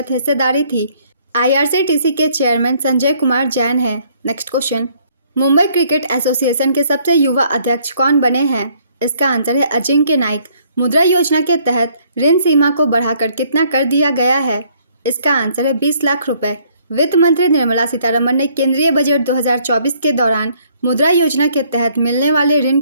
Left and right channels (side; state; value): both; inverted; correlation -0.64